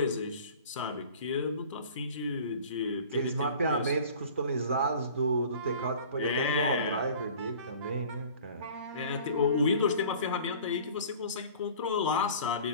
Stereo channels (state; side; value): inverted; both; correlation -0.45